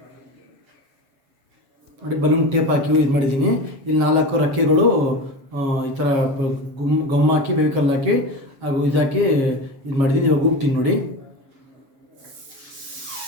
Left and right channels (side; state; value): left; late; 7.2 ms